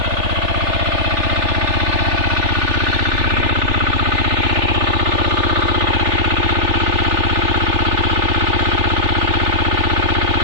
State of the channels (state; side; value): late; left; 3.4 ms